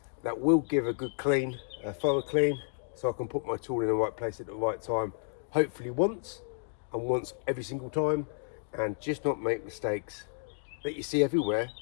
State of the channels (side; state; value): right; silent; digital silence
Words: that will give a good clean, a thorough clean, so I can put my tool in the right place at the right time, hopefully once, and once every single time, and just not make mistakes that you see everywhere